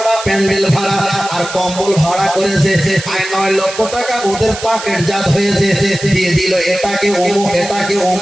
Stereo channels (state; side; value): noise; right; hiss, 10 dB below the sound